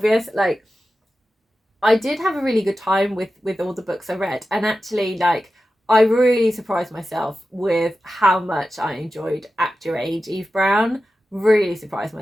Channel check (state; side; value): normal; both; correlation 0.93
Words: Like, I did have a really good time with all the books I read, and actually, like, I really surprised myself with how much I enjoyed Act Your Age, Eve Brown. Really surprised